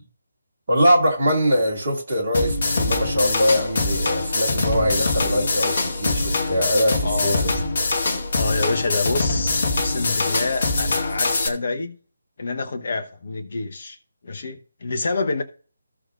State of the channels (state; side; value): inverted; both; correlation -0.85